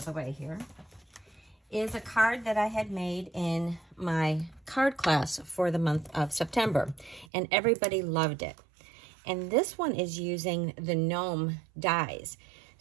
the way here, is a card that I had made in my card class for the month of September, and everybody loved it. And this one is using the gnome dies.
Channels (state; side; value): drops out; left; at 7.2 s